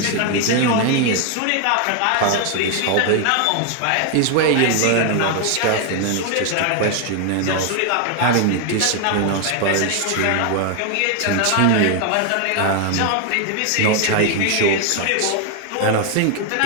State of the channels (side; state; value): both; different; correlation 0.01